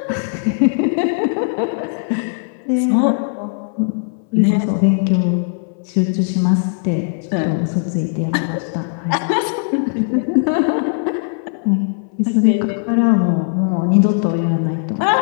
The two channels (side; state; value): right; silent; 62 dB below the other